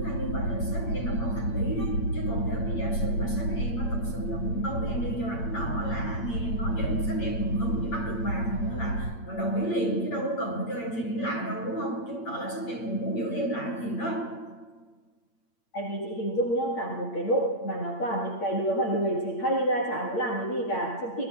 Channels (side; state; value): right; late; 8.7 ms